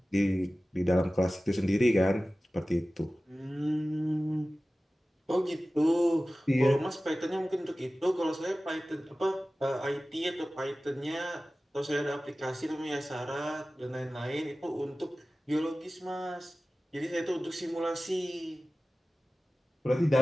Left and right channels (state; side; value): normal; both; correlation 0.96